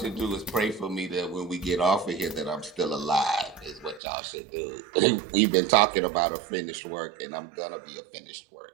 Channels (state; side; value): drops out; left; at 4.0 s